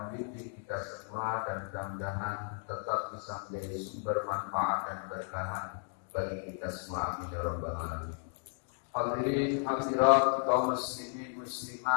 kita semua dan mudah-mudahan tetap bisa menjadi sumber manfaat dan berkah bagi kita semua. Amin ya rabbal alamin. Hadirin hadirat kaum muslimin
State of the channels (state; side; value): silent; right; 55 dB below the other